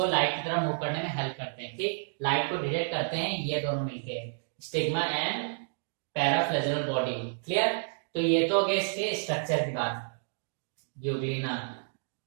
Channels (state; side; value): silent; left; digital silence